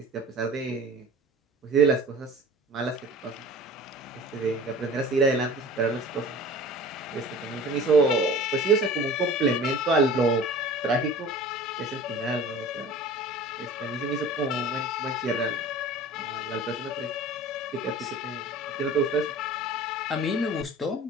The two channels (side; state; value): both; normal; correlation 0.41